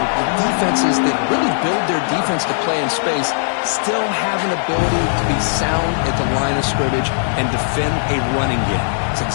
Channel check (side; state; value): right; silent; digital silence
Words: the defenses that really build their defense to play in space still have an ability to be sound at the line of scrimmage and defend a running game. It's